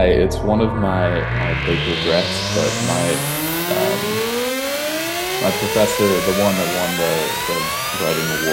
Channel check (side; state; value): both; identical; correlation 1.00